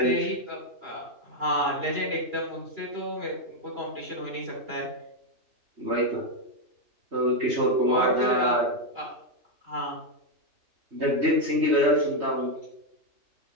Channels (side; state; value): left; late; 3.2 ms